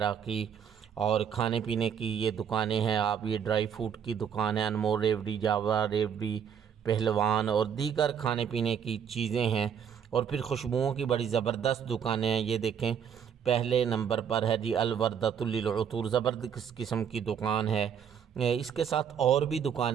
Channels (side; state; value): left; quieter; 7.9 dB